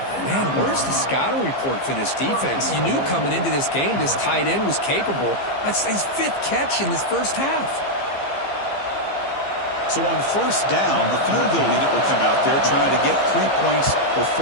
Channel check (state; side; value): late; right; 15 ms